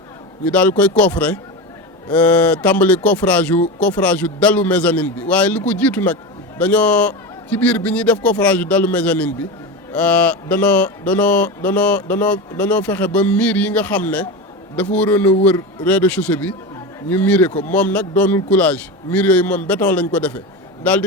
ñu daal koy coffrer tàmbali coffrage yu dalu mezzanine bi waaye li ko jiitu nag dañoo ci biir bi ñuy def coffrage yu dalu mezzanine bi danoo fexe ba miir yi nga xam ne dafa waroon a wër rez-de-chaussée bi ñu miire ko moom nag doonul coulage miir yooyu moom béton lañ ko defee daal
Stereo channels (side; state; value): both; normal; correlation 0.22